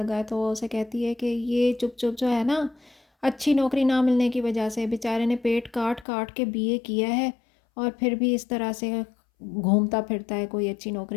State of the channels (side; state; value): right; drops out; at 6.1 s